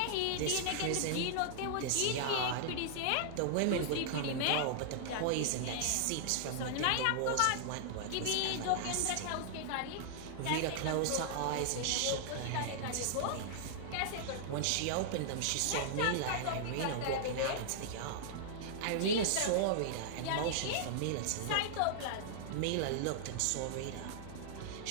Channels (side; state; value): both; different; correlation -0.01